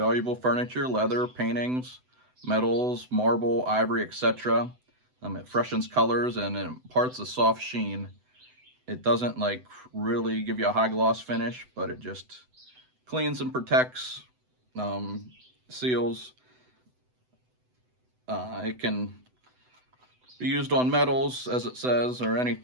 furniture, leather, paintings, metals, marble, ivory, etc. It freshens colors and it imparts a soft sheen. It doesn't like really give you a high gloss finish, but it just cleans and protects, seals. It can be used on metals, as it says, or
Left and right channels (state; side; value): late; left; 7.9 ms